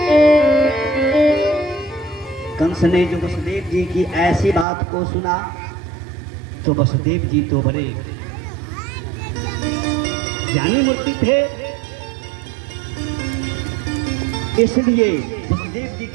कंस ने जो वसुदेव जी की ऐसी बात को सुना तो वसुदेव जी तो बड़े ज्ञानी मूर्ति थे, इसलिए वसुदेव जी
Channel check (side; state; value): left; drops out; at 4.7 s